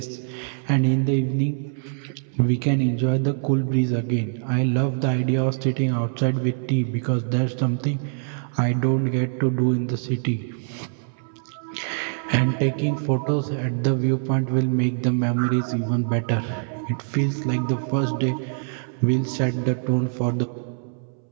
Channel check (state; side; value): silent; left; 63 dB below the other